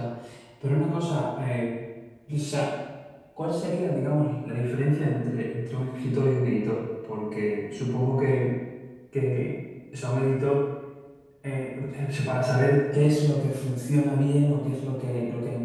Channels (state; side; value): identical; both; correlation 1.00